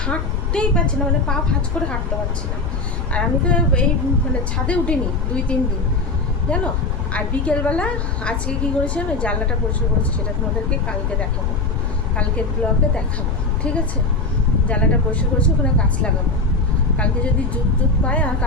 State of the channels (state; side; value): noise; left; rumble, 2 dB below the sound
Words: হাঁটতেই পারছি না, মানে পা ভাঁজ করে হাঁটতে পারছি না। আর আমি তো এই মানে ছাদে উঠিনি 2-3 দিন, জানো। আর বিকেলবেলা আজকে কী করেছি, আমি জানলাটা পরিষ্কার করেছি, সেটা তোমাদেরকে কালকে দেখাবো, কালকের ব্লগে দেখাবো, ঠিক আছে। জানলাটা পরিষ্কার করেছি, ওখানে গাছ লাগাবো। কালকে যদি জুত পায়, আর